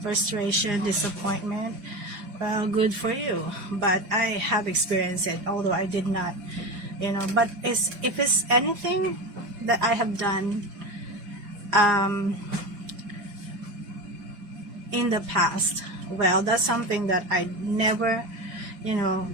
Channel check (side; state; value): left; late; 5.9 ms